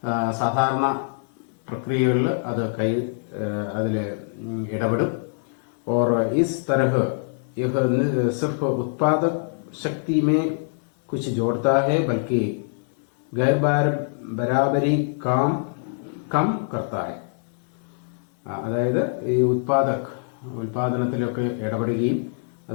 സാധാരണ പ്രക്രിയകളിൽ അത് അതിൽ ഇടപെടും. और इस तरह यह सिर्फ उत्पादक शक्ति में कुछ जोड़ता है बल्कि गैर बराबरी काम कम करता है. അതായത് ഈ ഉൽപാദനത്തിലൊക്കെ ഇടപെടുകയും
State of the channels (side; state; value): right; silent; digital silence